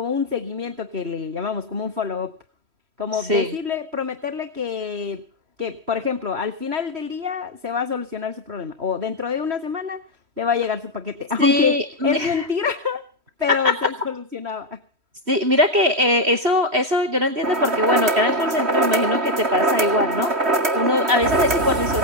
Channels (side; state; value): left; late; 3.1 ms